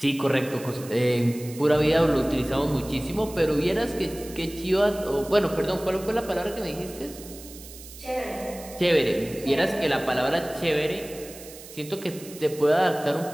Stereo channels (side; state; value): right; noise; hiss, 16 dB below the sound